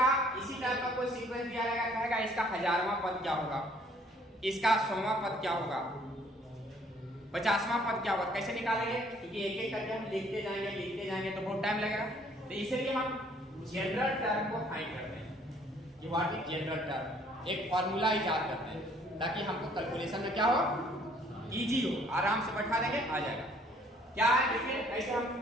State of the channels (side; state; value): both; normal; correlation 0.61